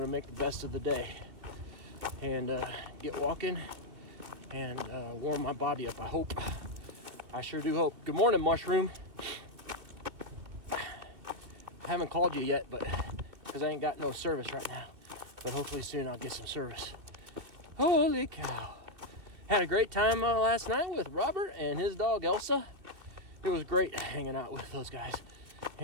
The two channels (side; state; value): left; late; 2.6 ms